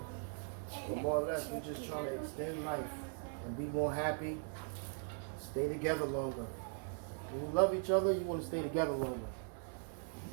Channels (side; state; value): left; silent; 51 dB below the other